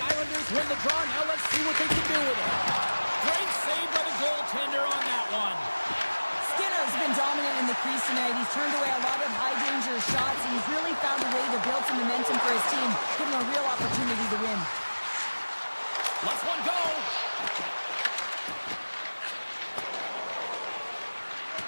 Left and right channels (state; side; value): inverted; both; correlation -1.00